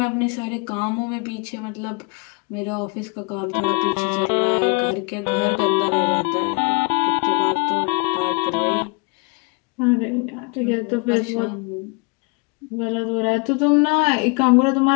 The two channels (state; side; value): quieter; right; 32.6 dB